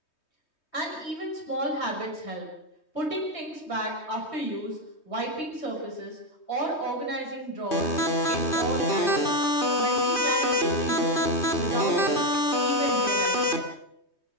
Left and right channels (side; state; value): right; late; 3.2 ms